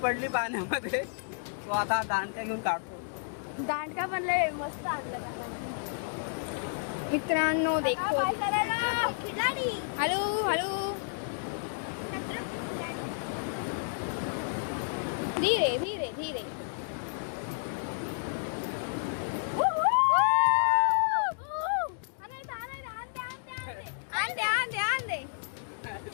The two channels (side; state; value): right; silent; digital silence